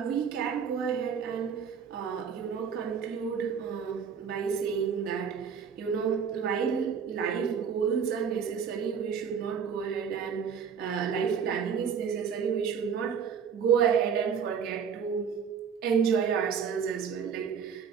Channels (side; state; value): left; quieter; 7.0 dB